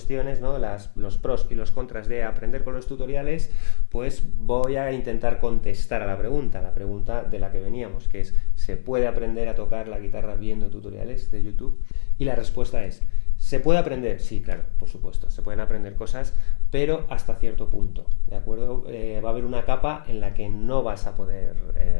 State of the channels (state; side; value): silent; right; digital silence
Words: ¿no? Los pros y los contras de aprender con los tutoriales, pues voy a intentar contestar a la pregunta de la que veníamos, que es: ¿se puede aprender a tocar la guitarra viendo tutoriales de YouTube? Y la respuesta es: ¿se puede aprender? Sí, claro, por supuesto, se pueden aprender cosas, pero hasta cierto punto, ¿de acuerdo? Va a haber una capa en la que no vas a